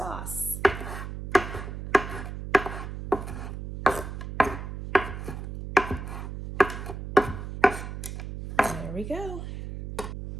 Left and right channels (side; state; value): right; noise; hum, 8 dB below the sound